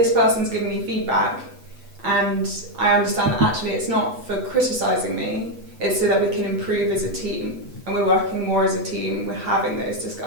person's giving me feedback and I understand that actually it's not for criticising me, it's so that we can improve as a team. And we're working more as a team, we're having those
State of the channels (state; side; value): late; left; 8.1 ms